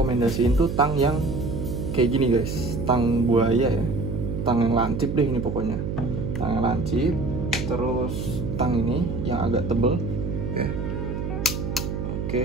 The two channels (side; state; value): right; noise; hum, 3 dB below the sound